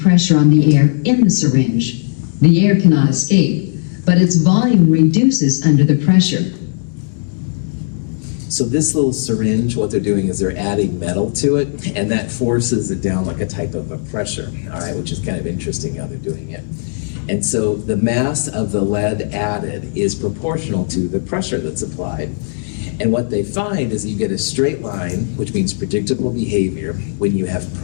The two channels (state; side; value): silent; right; 68 dB below the other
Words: pressure on the air in the syringe. The air cannot escape, but its volume reduces under the pressure. So this little syringe, what they're doing is they're adding metal to it, and that forces it down like a type of a pressure, all right, which is kind of interesting how they're doing it. And so the mass of the lead added is proportional to the pressure that's applied. And what they find is you get a straight line, which means predictable behavior, when you have